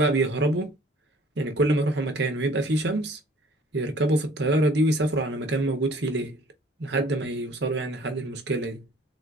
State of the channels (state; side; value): normal; both; correlation 0.53